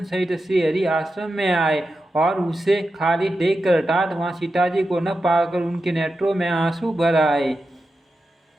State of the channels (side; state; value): both; normal; correlation 0.90